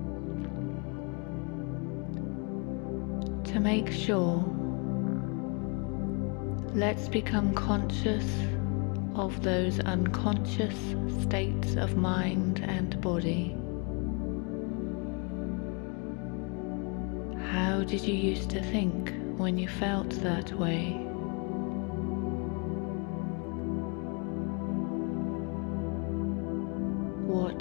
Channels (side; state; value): right; quieter; 34.5 dB